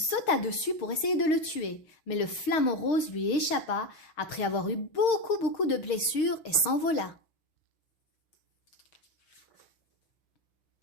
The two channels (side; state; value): right; late; 6.4 ms